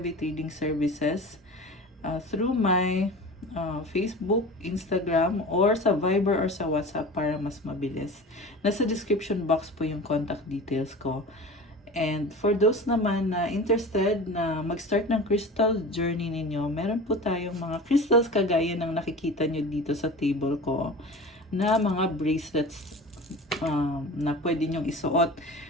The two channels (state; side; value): normal; both; correlation 0.35